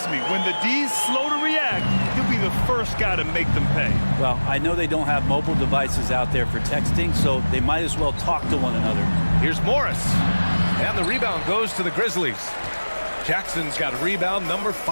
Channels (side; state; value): both; inverted; correlation -1.00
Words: me, when the D's slow to react, he'll be the first guy to make them pay. Well, I know they don't have mobile devices out there for texting, so they might as well talk to one another. Here's Morris. And the rebound goes to the Grizzlies. Jackson's got rebound number